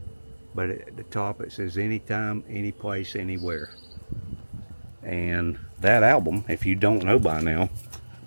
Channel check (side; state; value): both; inverted; correlation -1.00